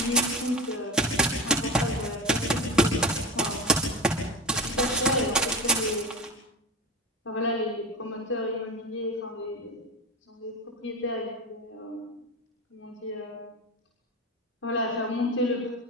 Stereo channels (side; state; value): both; normal; correlation 0.25